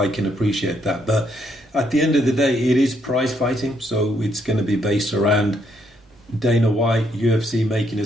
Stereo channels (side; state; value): both; normal; correlation 0.73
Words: can appreciate that. But at the end of the day, it is prize fighting, so it's going to be based around Dana White, UFC making